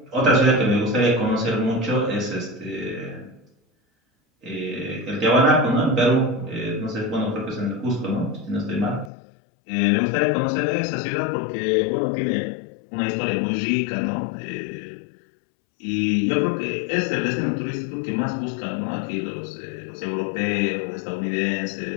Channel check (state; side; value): drops out; right; at 9.1 s